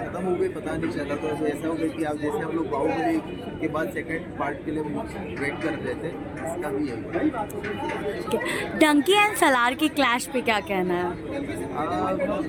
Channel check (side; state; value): both; identical; correlation 1.00